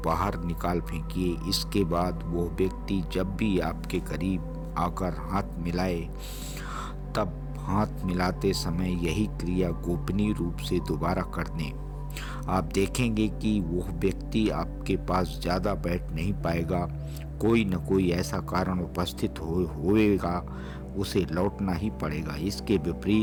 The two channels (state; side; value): identical; both; correlation 1.00